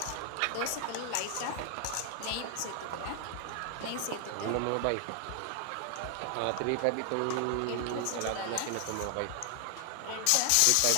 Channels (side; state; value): both; different; correlation 0.00